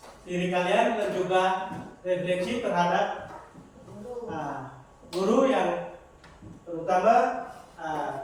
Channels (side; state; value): both; identical; correlation 1.00